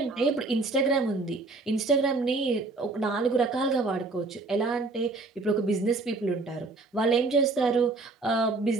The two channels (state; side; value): quieter; left; 3.5 dB